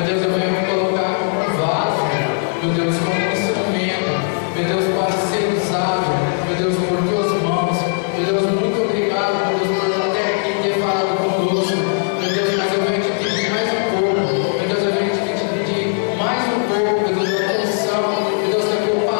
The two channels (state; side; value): silent; right; 67 dB below the other